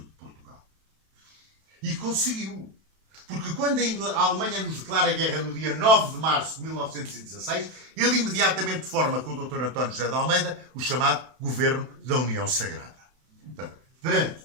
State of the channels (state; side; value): late; left; 32 ms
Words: Portugal. E conseguiu. Porque quando a Alemanha nos declara guerra no dia 9 de março de 1916, ele imediatamente forma com o Dr. António José de Almeida o chamado Governo da União Sagrada. Portanto, perante